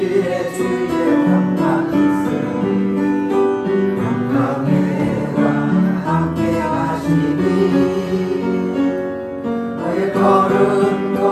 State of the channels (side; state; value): both; identical; correlation 1.00